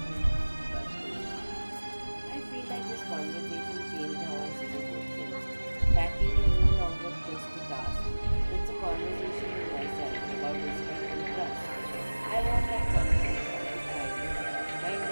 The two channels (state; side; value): inverted; both; correlation -1.00